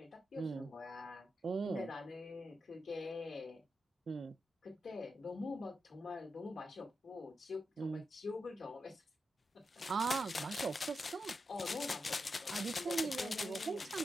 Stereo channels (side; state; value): both; normal; correlation 0.87